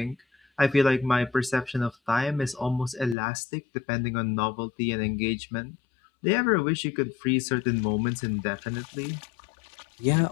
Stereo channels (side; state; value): right; drops out; at 3.2 s